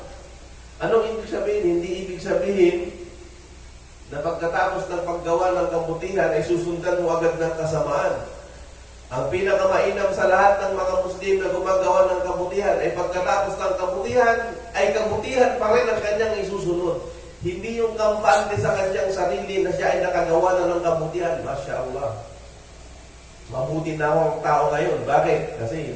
Anong ibig sabihin? Hindi ibig sabihin na pagkatapos ng paggawa ng kabutihan ay susundan mo agad ng kasamaan. Ang pinakamainam sa lahat ng mga Muslim na gumagawa ng kabutihan ay pagkatapos ng kabutihan ay kabutihan pa rin ang kanyang isusunod. Hindi yung kampante sa kanyang sarili na siya ay nakagawa na ng kabutihan. Masya Allah. Mabuti na ako ang tao ngayon. Bakit? Kasi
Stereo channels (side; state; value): both; identical; correlation 1.00